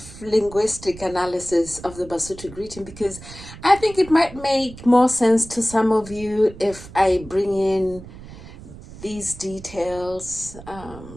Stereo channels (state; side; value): noise; right; rumble, 16 dB below the sound